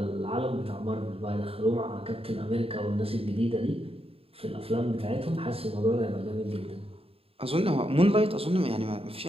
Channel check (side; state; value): left; late; 0.28 ms